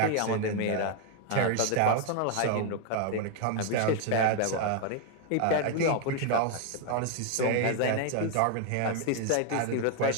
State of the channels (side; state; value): both; different; correlation 0.00